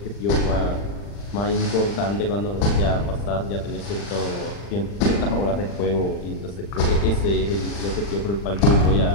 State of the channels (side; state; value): right; late; 40 ms